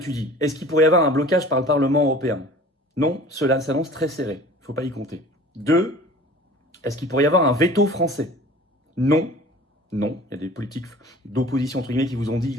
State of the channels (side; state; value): both; normal; correlation 0.44